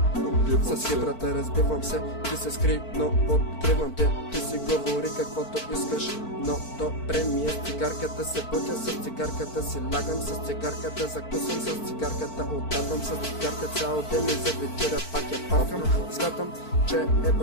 С хибрата разбивам се, ти се скри, но откривам те. Ти си говори каквото искаш, но добре ми е. С цигарката се будя, с цигарката си лягам, с цигарката закусвам, с цигарката отдавам, с цигарка цял ден и за вечеря пак я павкам. Смятам, че е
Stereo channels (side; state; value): right; late; 4.5 ms